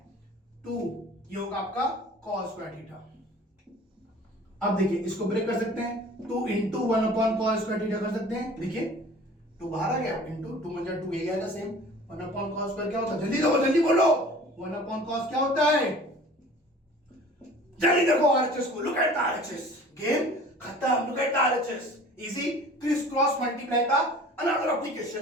2, ये होगा आपका cos स्क्वायर थीटा। अब देखिए इसको ब्रेक कर सकते हैं, 2 into 1 upon cos square theta कर सकते हैं, देखिए 2 बाहर आ गया, इंटू 2 में 2 ये आएगा सेम, 1 अपॉन cos स्क्वायर क्या होता है, जल्दी बोलो 1 अपॉन cos क्या होता है, जल्दी देखो आरएचएस को, look at the RHS, game खत्म, look at the RHS, easy criss cross multiply का अनदर एप्लीकेशन,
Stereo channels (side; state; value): both; normal; correlation 0.46